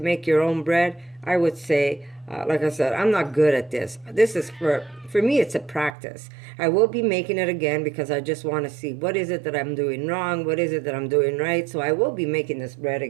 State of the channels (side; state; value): left; drops out; at 5.9 s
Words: your own bread, I would say, like I said, I'm not good at this. This is for me, it's a practice. I will be making it again because I just want to see what is it that I'm doing wrong, what is it that I'm doing right. So I will be making this bread